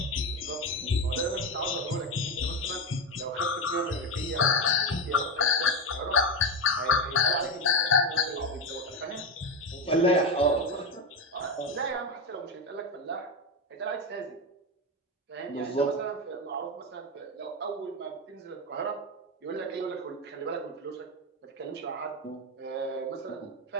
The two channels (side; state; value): both; normal; correlation 0.14